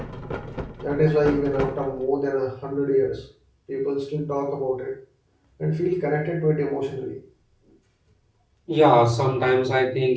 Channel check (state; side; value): identical; both; correlation 1.00